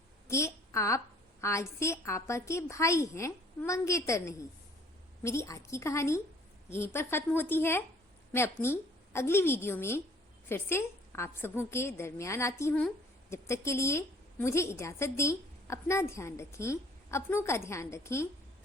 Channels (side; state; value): both; normal; correlation 0.56